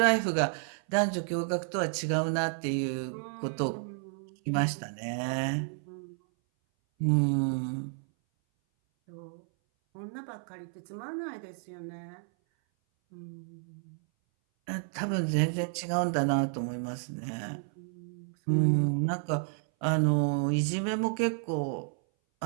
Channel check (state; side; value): silent; left; 57 dB below the other